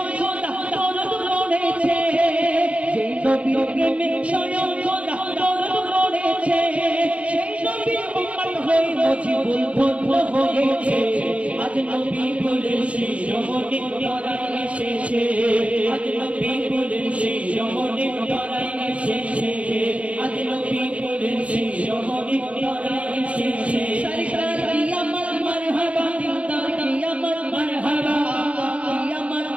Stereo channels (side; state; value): left; late; 0.063 ms